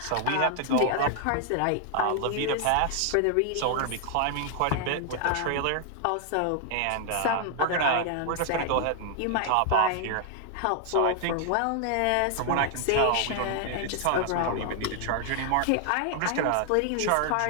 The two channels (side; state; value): both; different; correlation 0.00